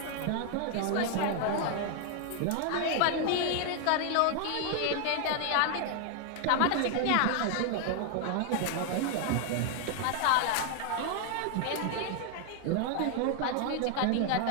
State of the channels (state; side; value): different; both; correlation 0.00